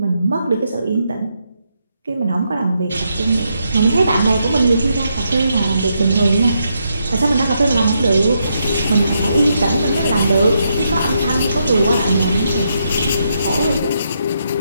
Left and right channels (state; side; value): inverted; both; correlation -0.80